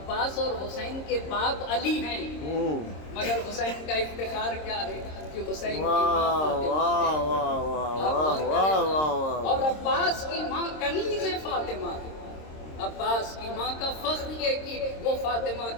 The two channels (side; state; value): right; late; 26 ms